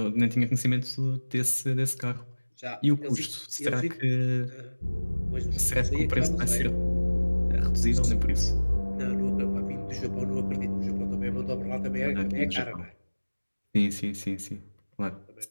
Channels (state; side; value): inverted; both; correlation -1.00